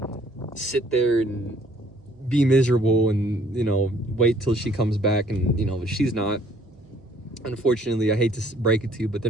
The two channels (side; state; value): right; noise; hum, 28 dB below the sound